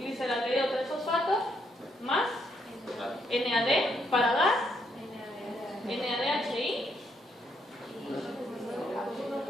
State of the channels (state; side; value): normal; both; correlation 0.75